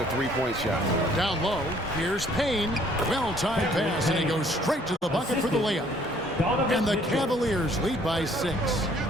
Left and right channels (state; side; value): normal; both; correlation 0.60